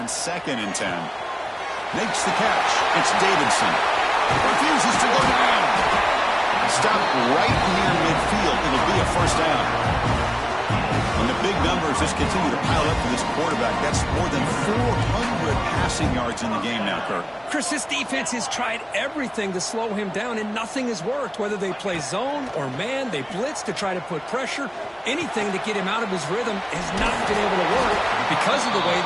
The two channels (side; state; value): both; identical; correlation 1.00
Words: second and 10. Makes the catch. It's Davidson. Refuses to go down. Stopped right near midfield. It'll be a first down. And the big numbers just continue to pile up for this quarterback. That's more than 400 passing yards in the game now, Kirk. Chris, this defense has tried everything to slow him down, and nothing has worked. Whether they play zone or man, they blitz to try to put pressure. Anything to get him out of his rhythm has not been able to work because of the way